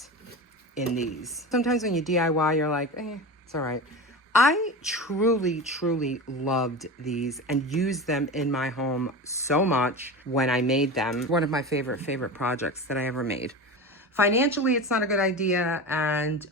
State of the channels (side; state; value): both; normal; correlation 0.27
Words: in these. Sometimes when you DIY, you're like, it's all right. I truly, truly loved these and used them in my home so much when I made them. One of my favorite projects that I ever made. Financially, it's not a good idea, and